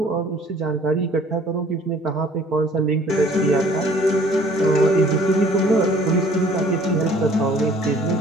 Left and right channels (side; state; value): both; normal; correlation 0.55